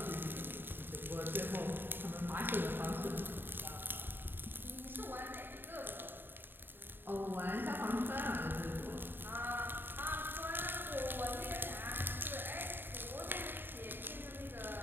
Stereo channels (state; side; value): late; left; 0.097 ms